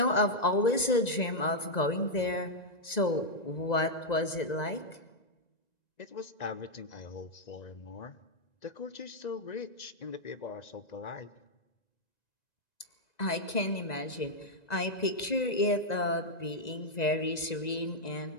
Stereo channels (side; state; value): right; late; 1.9 ms